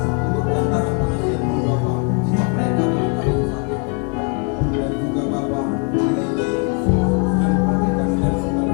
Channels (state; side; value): quieter; right; 35.6 dB